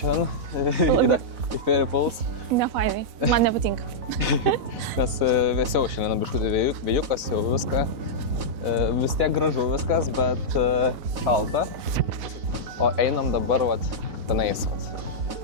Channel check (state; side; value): late; left; 4.0 ms